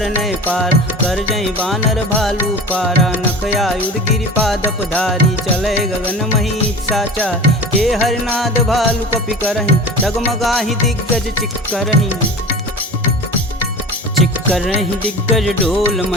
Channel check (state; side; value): normal; both; correlation 0.35